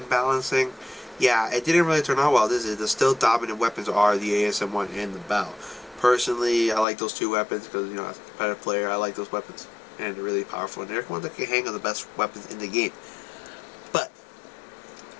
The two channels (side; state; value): right; drops out; at 6.9 s